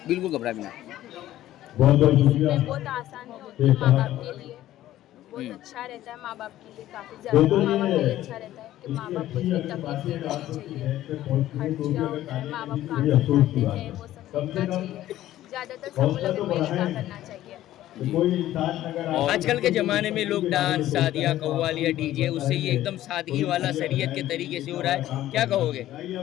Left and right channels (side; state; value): right; quieter; 13.9 dB